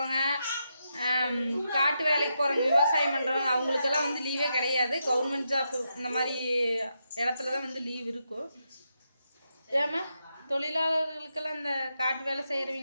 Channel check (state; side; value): inverted; both; correlation -0.84